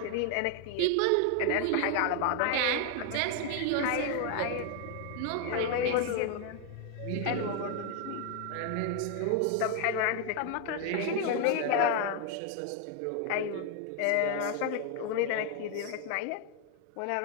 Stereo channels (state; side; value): different; both; correlation 0.00